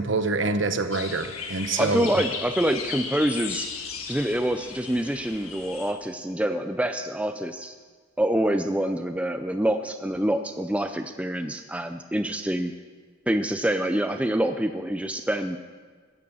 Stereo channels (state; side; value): normal; both; correlation 0.71